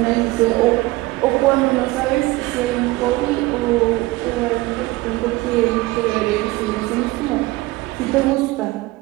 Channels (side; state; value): left; quieter; 20.0 dB